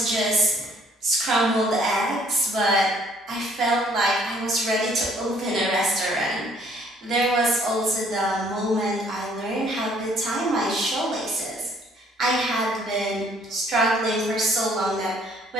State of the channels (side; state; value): both; normal; correlation 0.61